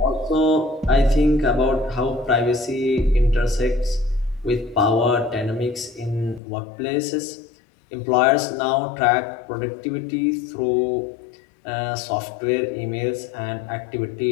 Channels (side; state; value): right; drops out; at 6.4 s